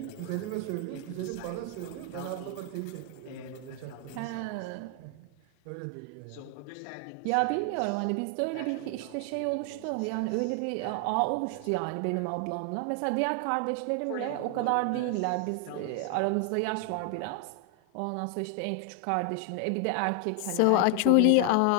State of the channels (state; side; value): different; both; correlation 0.00